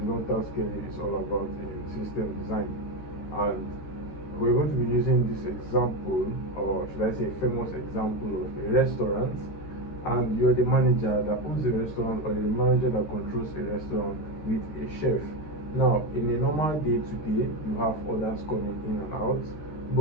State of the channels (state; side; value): late; right; 13 ms